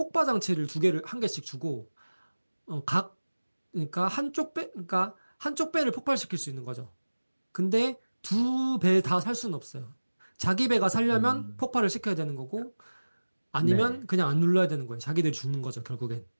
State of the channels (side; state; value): both; inverted; correlation -1.00